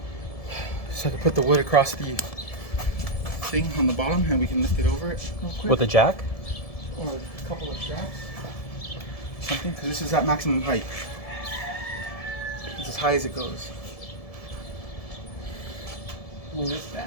So I can put the wood across the thing on the bottom, and we can lift it over it real quick. With a jack? Or a couple of straps. Something, because this is at maximum height. It's as high as it goes. What is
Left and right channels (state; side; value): late; right; 1.7 ms